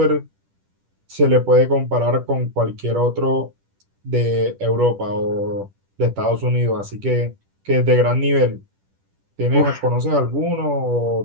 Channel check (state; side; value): late; left; 10 ms